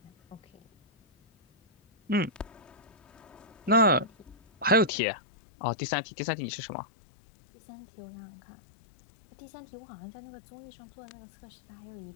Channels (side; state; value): right; drops out; at 4.9 s